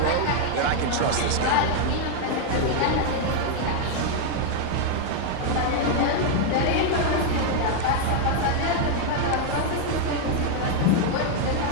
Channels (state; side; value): different; both; correlation 0.00